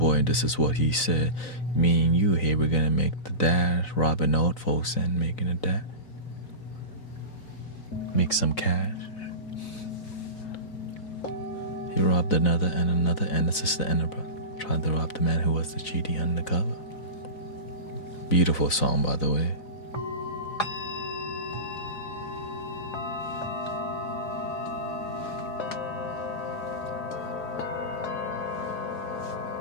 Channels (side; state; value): right; late; 4.0 ms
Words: and this is what he said. Me and you here, we're gonna make the dad robbing old folks and making a dad make some cash. He robbed another, and this is the end of it. Tried to rob the man who was the GD undercover. Beautiful song, by the way.